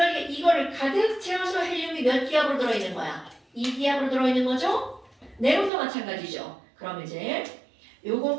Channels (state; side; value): drops out; left; at 5.7 s